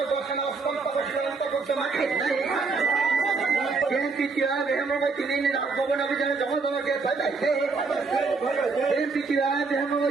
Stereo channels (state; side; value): quieter; left; 4.4 dB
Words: বাসনা অন্তর শ্রীলঙ্কা করতে মাঠে নাই বিএনপি কিভাবে হেমবতী নিয়ে রাজভবন অভিযানে জনগণকে পাঠাইছে বিএনপি কিভাবে